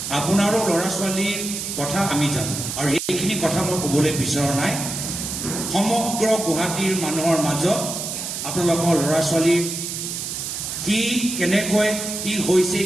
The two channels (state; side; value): noise; right; hiss, 5 dB below the sound